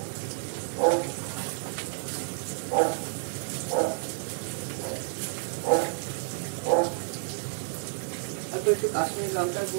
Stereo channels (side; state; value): left; silent; digital silence